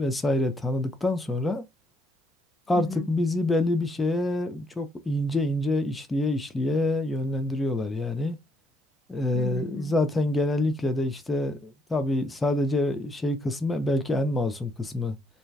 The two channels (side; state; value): both; normal; correlation 0.73